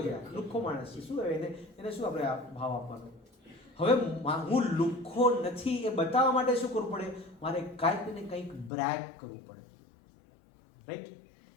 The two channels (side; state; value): right; drops out; at 8.7 s